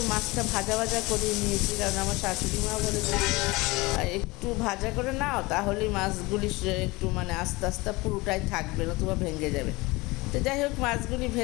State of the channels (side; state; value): right; quieter; 22.9 dB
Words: মাছটা ভাজা ভাজা করে নিয়েছি, কারণ আমার শাশুড়ি মা বলে যে একটু ভাজা করে নাও, তাহলেই মাছগুলি একটু মানে আস্তে আস্তে পুরোটাই থাকবে, নতুবা ভেঙে যাবে। তো যাই হোক, মাছগুলি